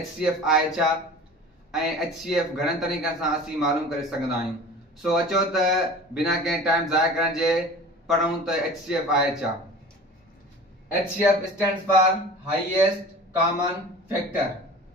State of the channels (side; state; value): both; normal; correlation 0.40